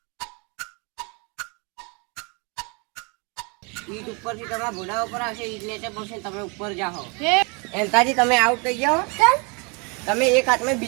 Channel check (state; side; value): quieter; left; 31.5 dB